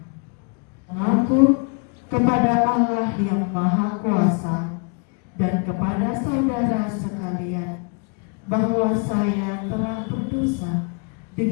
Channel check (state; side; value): quieter; right; 36.7 dB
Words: Mengaku kepada Allah yang Maha Kuasa dan kepada saudara sekalian bahwa saya telah berdosa